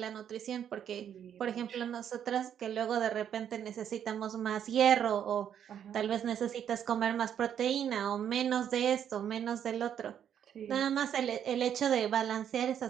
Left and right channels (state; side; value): quieter; left; 9.1 dB